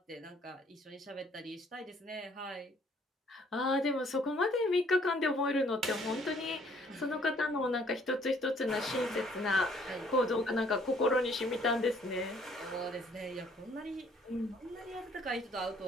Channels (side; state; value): both; normal; correlation 0.62